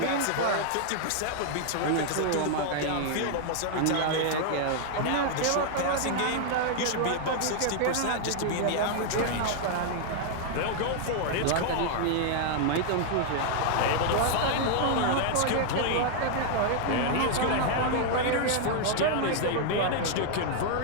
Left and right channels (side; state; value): both; different; correlation 0.00